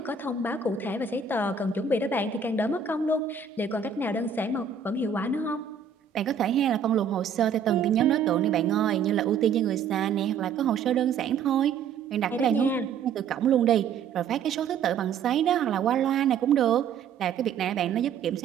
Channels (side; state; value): left; quieter; 6.6 dB